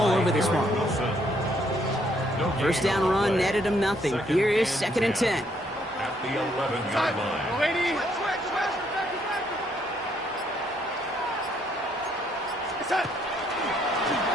over this one. 1st down run netted him nothing. Here is 2nd and 10. At the 11-yard line.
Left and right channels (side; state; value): both; normal; correlation 0.70